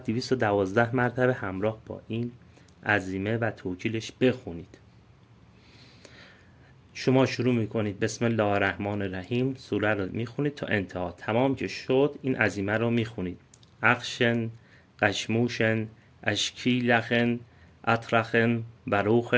212 مرتبه همراه با این عزیمه و توکیلش بخونید. شما شروع میکنید بسم الله الرحمن الرحیم، سوره رو میخونید تا انتها. تمام که شد این عزیمه رو میخونید. اخشن، قشموشن، اشکیلخن، اطرخن،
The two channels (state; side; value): identical; both; correlation 1.00